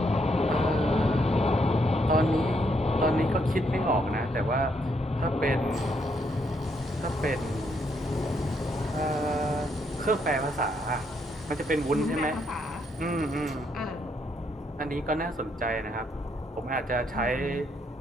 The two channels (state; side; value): normal; both; correlation 0.74